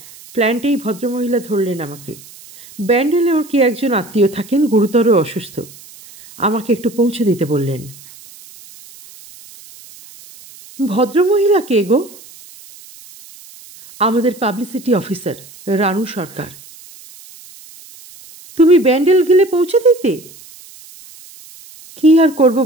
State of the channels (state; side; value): noise; right; hiss, 21 dB below the sound